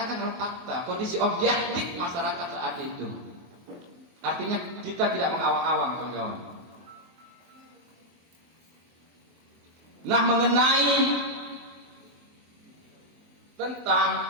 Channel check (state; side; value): late; left; 23 ms